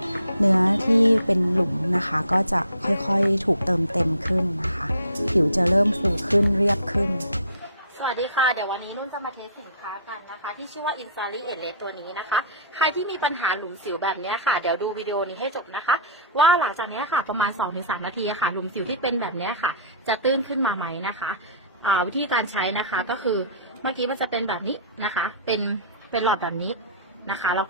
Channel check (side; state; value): both; inverted; correlation -0.43